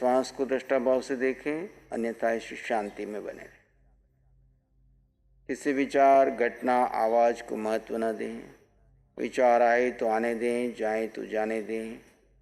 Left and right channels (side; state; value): both; identical; correlation 1.00